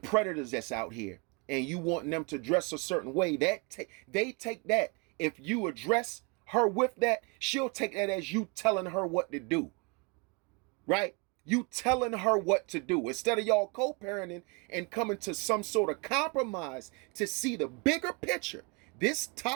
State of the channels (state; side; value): quieter; left; 30.4 dB